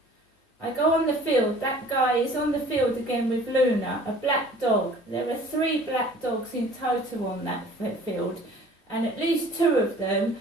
I go on the field. That guy is on the field again with Luna, a black dog. There are 3 black dogs in total on that field, and at least 2 of them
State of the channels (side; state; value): both; normal; correlation 0.50